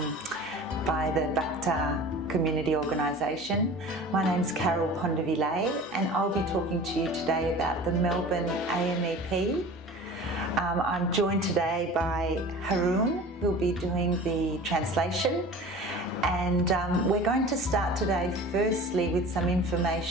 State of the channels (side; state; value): both; normal; correlation 0.39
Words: by the Bakhtar community organisation. My name's Carol Pondavile and I'll be talking to you today about the Melbourne AMEP. I'm joined today by Haroon, who'll be doing the translation. And we're going to start today firstly with some